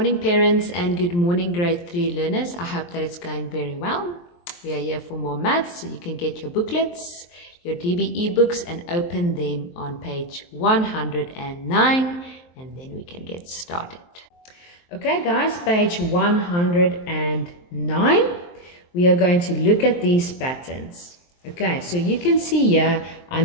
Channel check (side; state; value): right; late; 23 ms